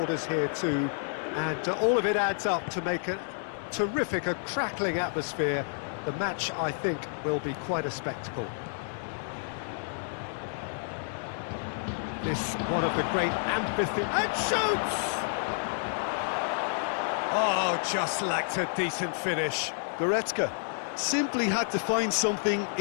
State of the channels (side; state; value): right; silent; digital silence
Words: here too, and all of it adds up to make a terrific, a crackling atmosphere. The match, I think, will be quite a spectacle. This one of the great amphitheatres, and shoots! Oh, just lacked a decent finish. Goretzka simply had to find something